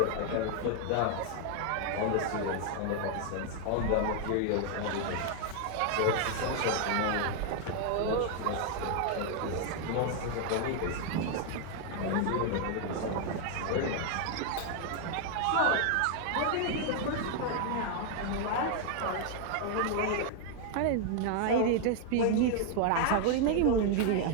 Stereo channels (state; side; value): different; both; correlation 0.00